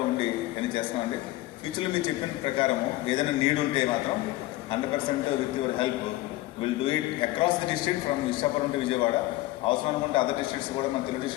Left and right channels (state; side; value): quieter; right; 17.8 dB